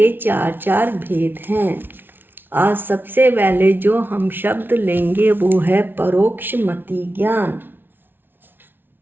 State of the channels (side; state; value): left; late; 0.10 ms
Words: चार भेद हैं। आज सबसे पहले जो हम शब्द लेंगे वो है परोक्ष मति ज्ञान।